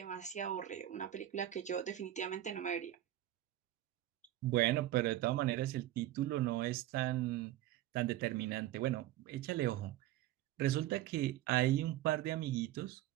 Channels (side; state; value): left; quieter; 14.1 dB